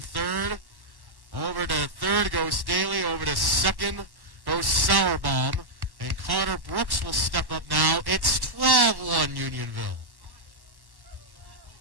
Over to third goes Daly. Over to second goes Sauerbaum. And Connor Brooks will step up now. It's 12-1 Unionville.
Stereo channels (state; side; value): late; left; 1.1 ms